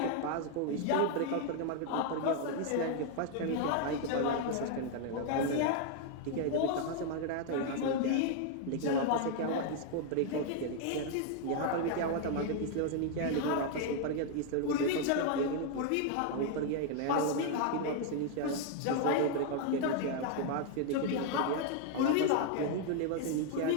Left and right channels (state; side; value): different; both; correlation 0.00